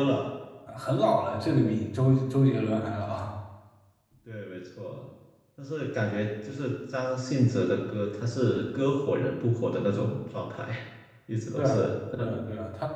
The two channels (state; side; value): identical; both; correlation 1.00